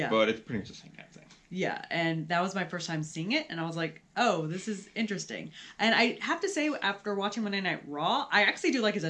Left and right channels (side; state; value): both; identical; correlation 1.00